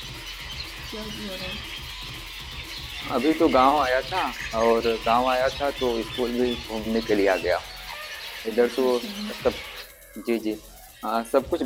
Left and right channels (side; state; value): both; identical; correlation 1.00